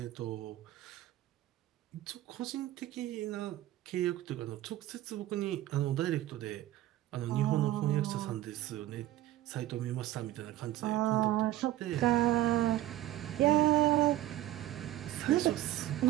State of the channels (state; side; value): quieter; left; 14.7 dB